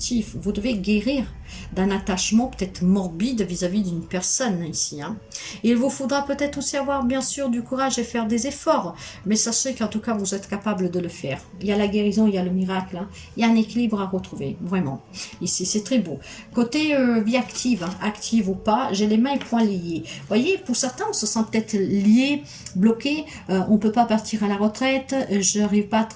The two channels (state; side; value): identical; both; correlation 1.00